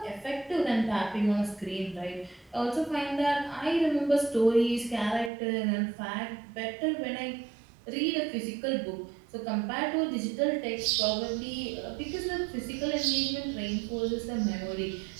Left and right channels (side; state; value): left; drops out; at 5.3 s